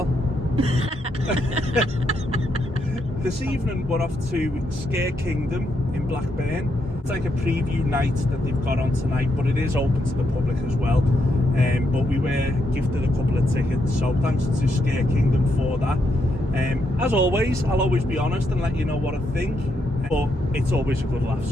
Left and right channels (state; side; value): normal; both; correlation 0.79